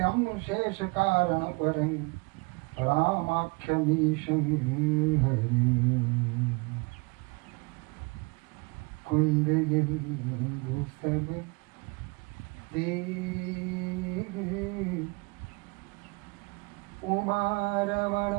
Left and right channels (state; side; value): quieter; left; 29.1 dB